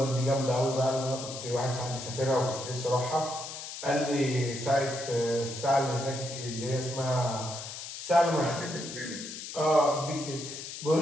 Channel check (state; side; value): noise; left; hiss, 9 dB below the sound